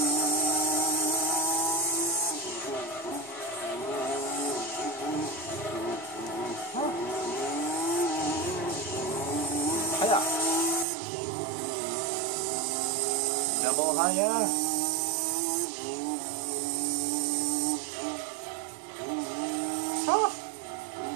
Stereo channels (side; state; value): left; drops out; at 10.9 s